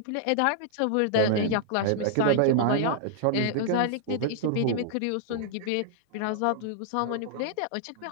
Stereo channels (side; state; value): both; different; correlation -0.01